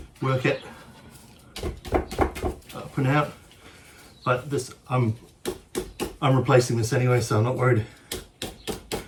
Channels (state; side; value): identical; both; correlation 1.00